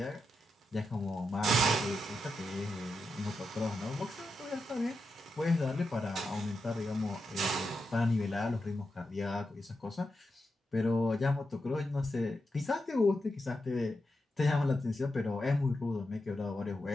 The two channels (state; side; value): normal; both; correlation 0.87